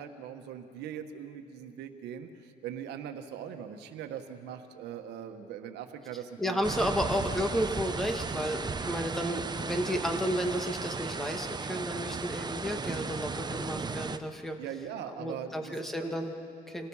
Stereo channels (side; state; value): both; normal; correlation 0.68